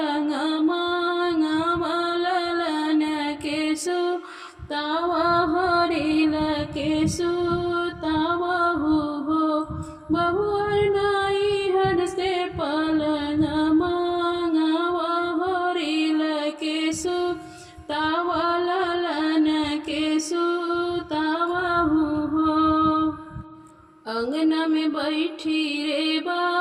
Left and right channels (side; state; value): both; identical; correlation 1.00